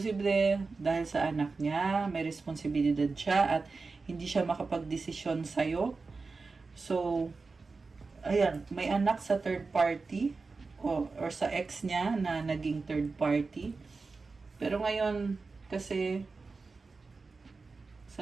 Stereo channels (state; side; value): quieter; left; 4.1 dB